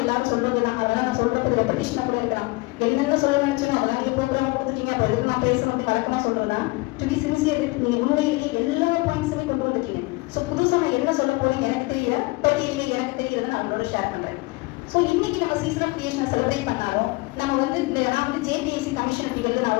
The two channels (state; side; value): quieter; right; 24.0 dB